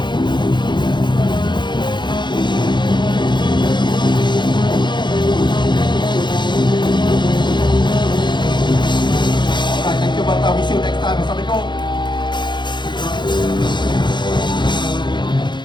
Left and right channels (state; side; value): late; right; 0.22 ms